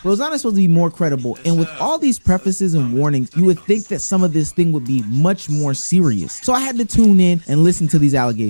Rosanna's supposed to be more credible. And with all these prefaces and warnings, you would think that some of this thing would be much more serious. So I had to tune in and listen to these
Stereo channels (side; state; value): both; inverted; correlation -1.00